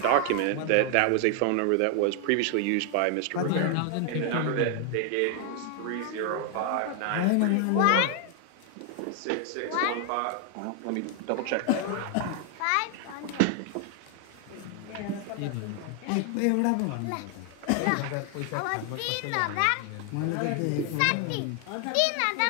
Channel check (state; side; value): different; both; correlation 0.00